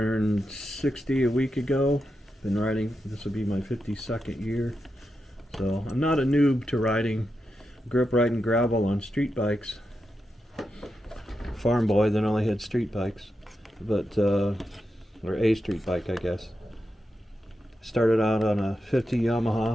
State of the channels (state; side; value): normal; both; correlation 0.88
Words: 60 a week ago. Been riding, this will be my 52nd year. So I'm not a noob to riding. Grew up riding gravel on street bikes. Farm boy, then only had street bikes. But, or a street bike, I guess. Started out on a 50